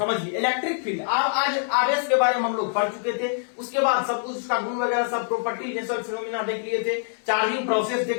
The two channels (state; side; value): silent; right; digital silence